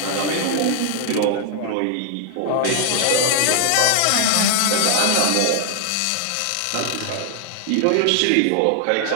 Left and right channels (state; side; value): different; both; correlation 0.00